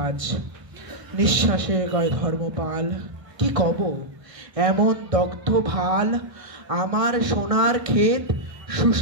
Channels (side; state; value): left; late; 1.6 ms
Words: নিঃশ্বাসে কয় ধর্মপাল, কি কব এমন দগ্ধ ভাল। আমার সোনার ক্ষেত